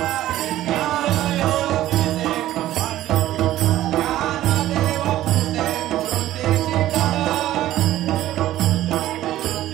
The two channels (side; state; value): left; quieter; 14.1 dB